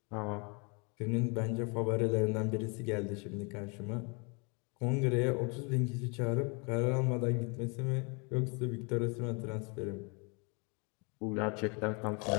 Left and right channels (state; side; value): quieter; right; 32.7 dB